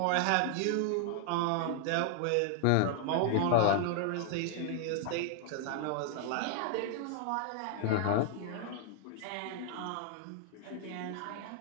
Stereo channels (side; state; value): both; different; correlation 0.00